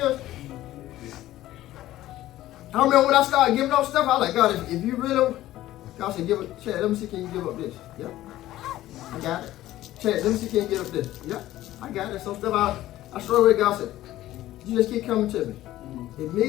I remember when I started giving up stuff, I was like, God, if you really, God said, give it, Chad, let me see, can you give up this? Yep, I got it. Chad, let me see, can you give up this? Yep, I got it. Some stuff I struggle with. God said, you just keep coming to me.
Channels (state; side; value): quieter; right; 14.8 dB